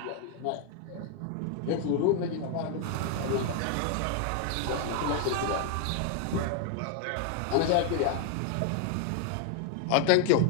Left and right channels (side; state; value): both; different; correlation 0.00